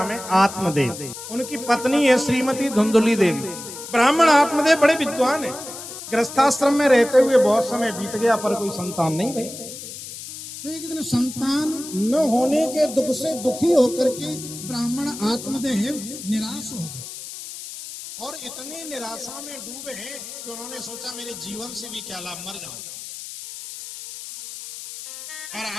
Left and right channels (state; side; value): noise; left; hiss, 11 dB below the sound